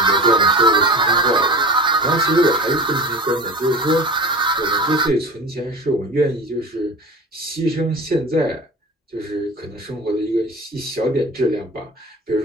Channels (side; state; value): both; normal; correlation 0.34